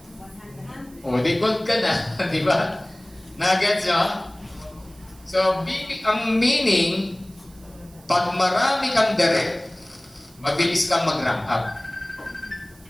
O, di gold ka na, di ba? Nagets nyo? So, ang meaning, pag marami kang direct, mabilis kang mag-rank up.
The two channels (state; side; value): noise; right; hiss, 26 dB below the sound